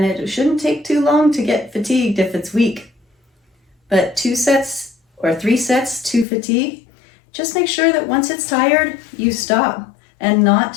it shouldn't take too long to get fatigued if it's weak. But 2 sets or 3 sets to fatigue, just make sure that once it's tired, you stop and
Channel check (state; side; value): drops out; right; at 6.2 s